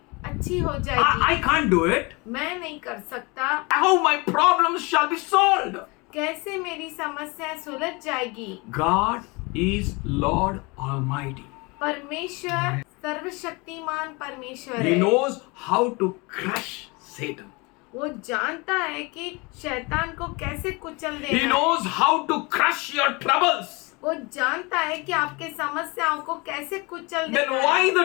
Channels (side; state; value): right; quieter; 27.0 dB